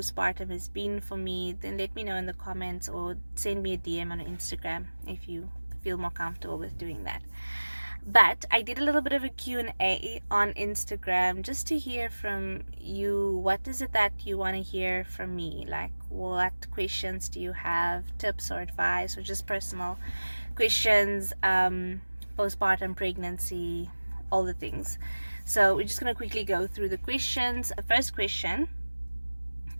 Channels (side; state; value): both; inverted; correlation -1.00